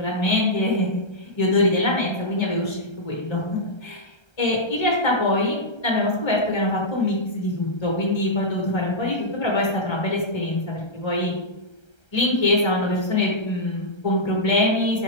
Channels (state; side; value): late; right; 1.3 ms